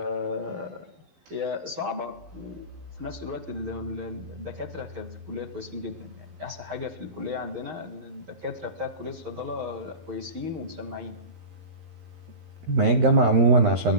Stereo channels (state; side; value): late; left; 12 ms